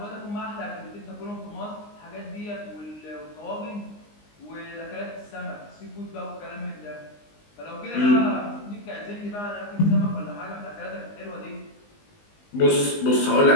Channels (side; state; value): right; late; 19 ms